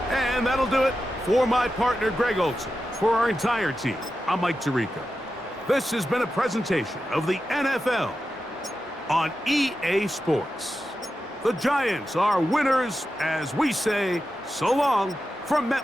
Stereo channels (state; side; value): normal; both; correlation 0.91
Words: And that'll do it for my partner, Greg Olson. For our entire team, I'm Mike Tirico. This has been a presentation of the NFL on EA Sports. The Giants are winners as we say so long from